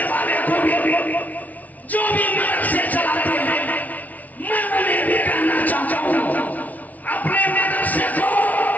वाले को भी, जो भी मदरसे चलाते हैं, मैं उन्हें भी कहना चाहता हूँ अपने मदरसे को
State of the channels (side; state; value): right; late; 0.073 ms